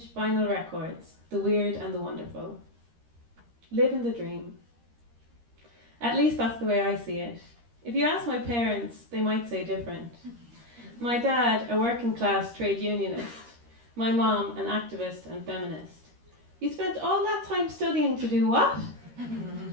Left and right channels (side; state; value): left; late; 13 ms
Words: vinyl records, the weird and the wonderful. Living the dream. At least that's the way I see it. If you ask my parents, they might say different. My dad, a working class trade unionist. My mom, an activist and feminist. You spent all that time studying to do what?